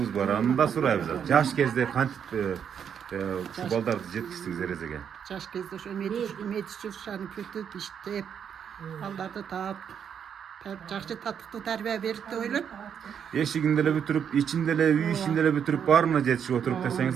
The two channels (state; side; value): quieter; left; 8.0 dB